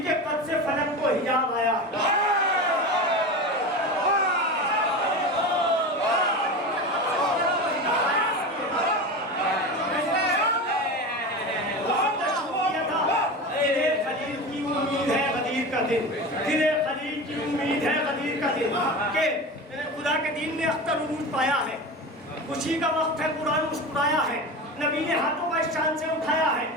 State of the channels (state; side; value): normal; both; correlation 0.27